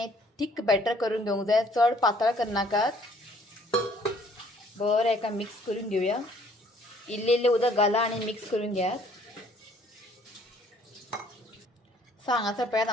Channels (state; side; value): normal; both; correlation 0.60